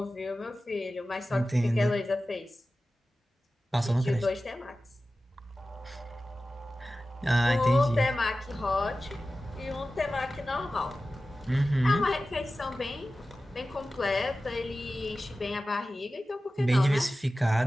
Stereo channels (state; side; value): normal; both; correlation 0.95